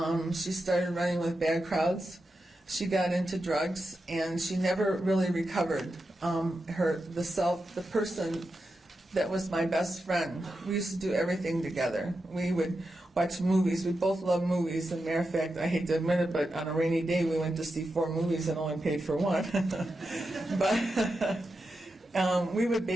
She started running with bad crowds. She got into drugs, and she never really recovered. The person that was my best friend. We used to do everything together. We would watch movies. We both love movies. As a matter of fact, I hate to admit it, but on a rainy day, we went to see 4 movies and only paid for one. But we would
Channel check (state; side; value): normal; both; correlation 0.89